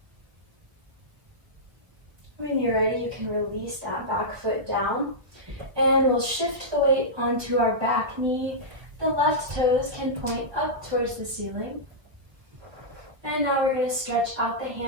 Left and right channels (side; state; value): left; late; 1.5 ms